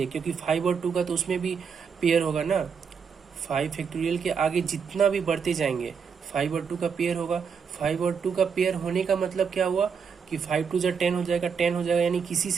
है, क्योंकि 5 और 2 का तो उसमें भी पेयर होगा ना। 5 फैक्टोरियल के आगे जितना भी बढ़ते जाएंगे 5 और 2 का पेयर होगा। 5 और 2 का पेयर होने का मतलब क्या हुआ कि 5 2 = 10 हो जाएगा, 10 हो जाएगा, यानी किसी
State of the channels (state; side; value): quieter; left; 6.3 dB